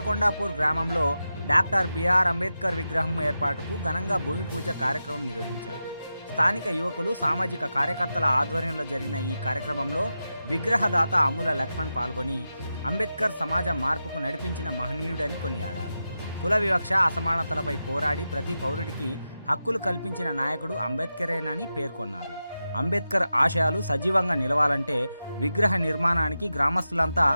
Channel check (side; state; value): both; inverted; correlation -0.91